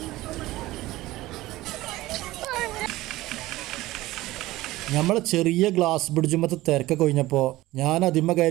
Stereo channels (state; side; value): quieter; left; 17.5 dB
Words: നമ്മൾ ചെറിയ ഗ്ലാസ് ബ്രിഡ്ജുമത്തെ തിരക്കൊക്കെ കഴിഞ്ഞപ്പോൾ ഞാൻ അതിമ്മ